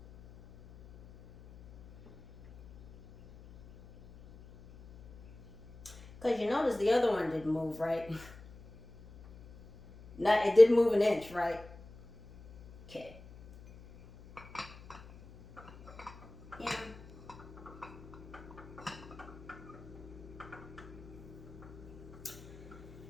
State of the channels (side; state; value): left; noise; hum, 19 dB below the sound